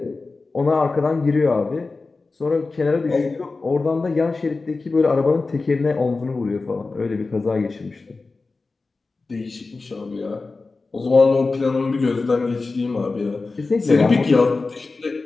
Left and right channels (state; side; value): quieter; right; 3.8 dB